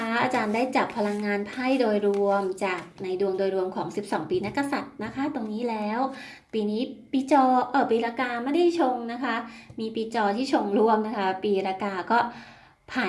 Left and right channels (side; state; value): both; identical; correlation 1.00